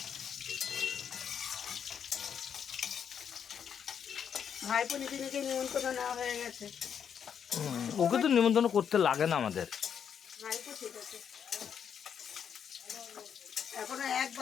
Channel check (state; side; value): quieter; right; 7.9 dB